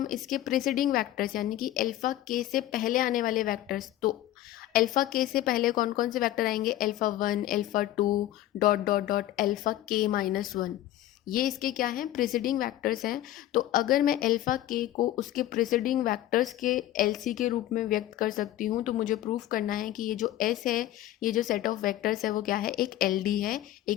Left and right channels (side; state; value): right; quieter; 13.9 dB